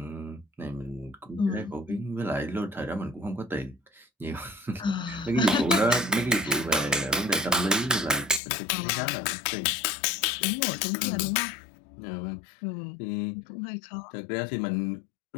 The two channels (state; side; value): drops out; right; at 8.4 s